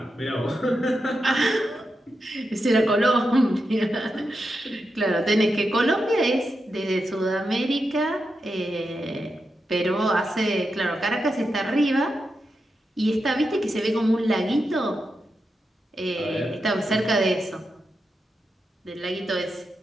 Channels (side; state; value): both; normal; correlation 0.88